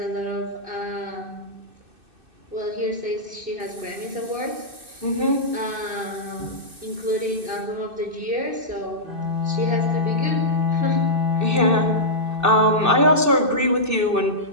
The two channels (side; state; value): left; late; 2.6 ms